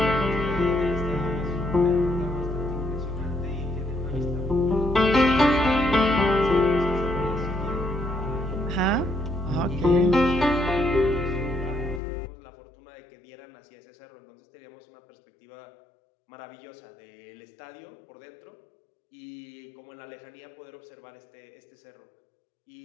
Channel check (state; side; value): drops out; right; at 12.0 s